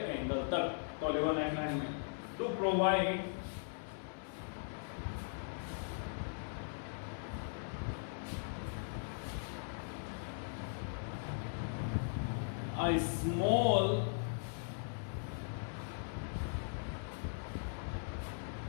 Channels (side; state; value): right; silent; 52 dB below the other